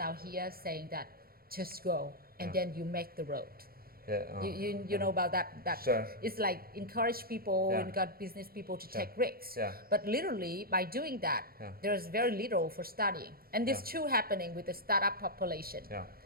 here saying that just go and then you make the road. Yeah, you know about that. Sure. It's like encourage people and got business people to take risks. Yeah. But literally by doing that, there's very little for studying. And this too happening with the startup population. Yeah.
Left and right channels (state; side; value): late; left; 0.44 ms